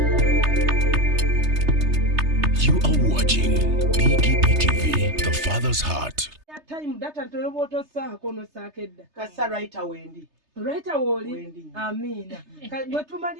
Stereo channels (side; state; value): left; late; 3.3 ms